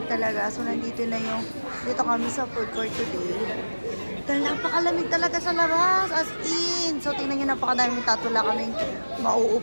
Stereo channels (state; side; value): inverted; both; correlation -1.00